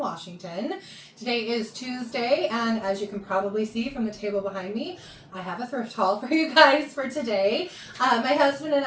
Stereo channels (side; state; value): both; identical; correlation 1.00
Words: Today is Tuesday, and as you can probably see from the table behind me, I have a thrift haul for you guys for today. My husband and